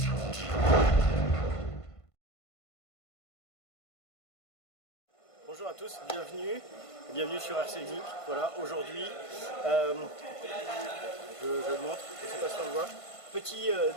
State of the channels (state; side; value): late; right; 1.5 ms